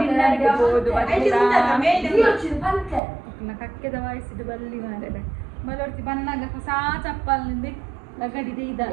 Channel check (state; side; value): drops out; left; at 3.0 s